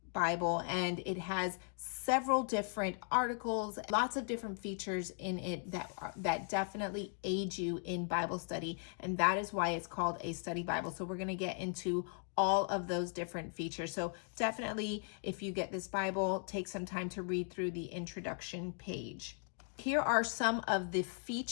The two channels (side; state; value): right; silent; 53 dB below the other